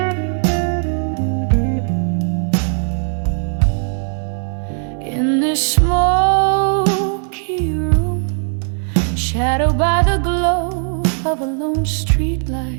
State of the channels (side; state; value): left; silent; 55 dB below the other